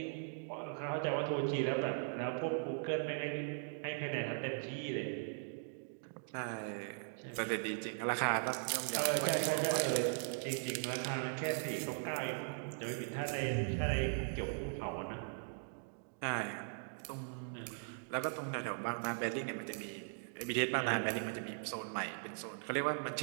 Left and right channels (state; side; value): silent; left; digital silence